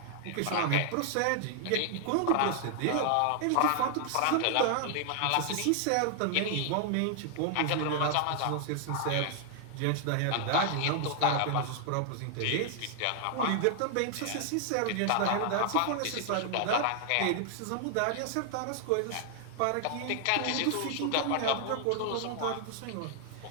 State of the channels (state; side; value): different; both; correlation 0.00